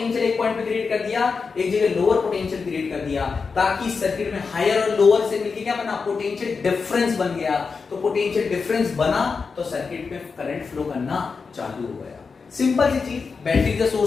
एक पॉइंट पे क्रिएट कर दिया, एक जगह लोअर पोटेंशियल क्रिएट कर दिया, ताकि सर्किट में हायर और लोअर से मिलके क्या बना, पोटेंशियल डिफरेंस बन गया। तो पोटेंशियल डिफरेंस बना तो सर्किट में करंट फ्लो करना चालू हो गया। सिंपल सी चीज, battery is the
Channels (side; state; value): right; quieter; 5.0 dB